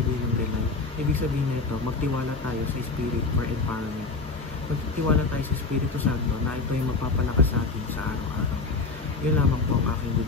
ng rely? Ibig sabihin na ito, magtiwala tayo sa Spirit for empowerment. Magtiwala tayo sa Espiritu Santo na ito yung magpapalakas sa atin sa araw-araw. Yun lamang po ang aking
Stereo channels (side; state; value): right; quieter; 3.9 dB